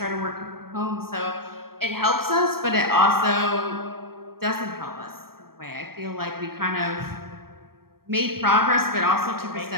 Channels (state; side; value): late; left; 0.94 ms